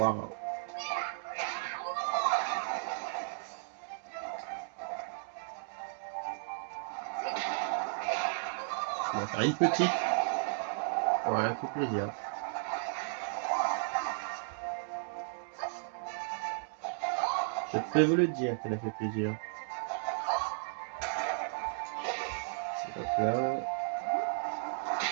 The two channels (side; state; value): left; silent; digital silence